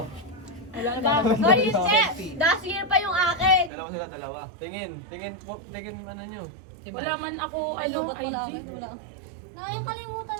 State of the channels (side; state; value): left; drops out; at 3.7 s